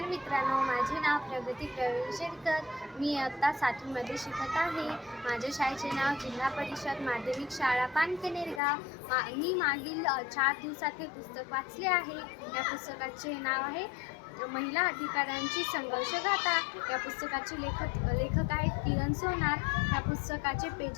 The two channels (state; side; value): drops out; right; at 8.6 s